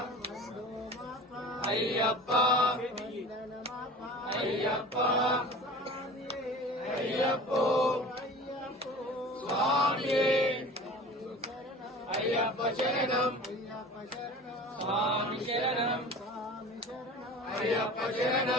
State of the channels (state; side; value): normal; both; correlation 0.39